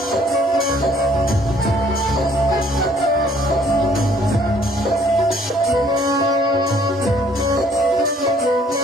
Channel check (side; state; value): both; normal; correlation 0.60